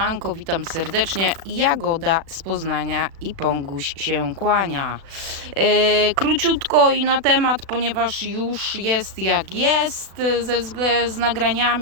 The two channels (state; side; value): late; left; 36 ms